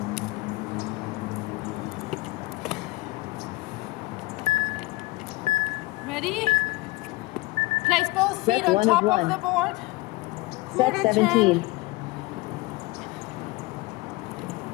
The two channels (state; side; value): quieter; right; 21.7 dB